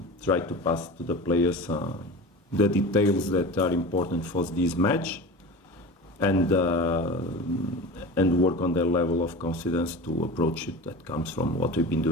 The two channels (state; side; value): normal; both; correlation 0.32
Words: try to pass to the players the details that are important for this match, and work on their level of confidence to approach it. That comes from what we've been